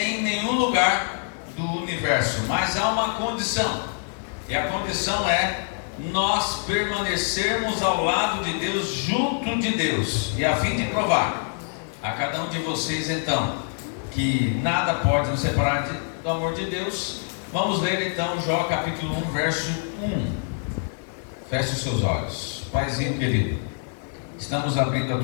nenhum lugar do universo. Mas há uma condição. E a condição é nós permanecermos ao lado de Deus, junto de Deus. E a fim de provar a cada um de vocês, então, que nada pode nos separar do amor de Deus. Vamos ler então Jó capítulo 1, verso 1. Feche os seus olhos. Paizinho querido, estamos abrindo a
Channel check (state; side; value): silent; right; 61 dB below the other